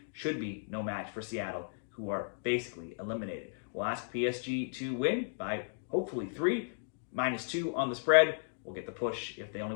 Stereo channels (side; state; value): right; silent; digital silence